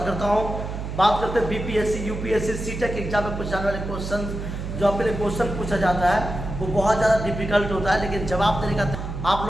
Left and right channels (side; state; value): right; noise; hum, 6 dB below the sound